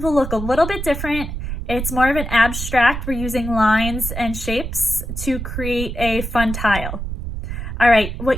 will look a little bit different. It's more of an abstract. We're using lines and shapes to create a fun tile. All right,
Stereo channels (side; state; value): right; noise; rumble, 6 dB below the sound